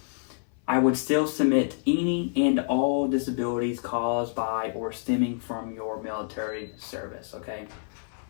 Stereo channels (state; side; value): silent; right; 57 dB below the other